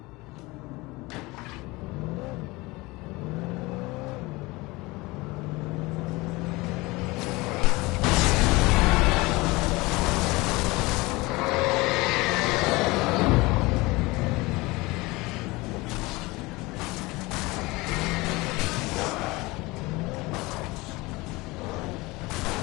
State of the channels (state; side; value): quieter; right; 22.6 dB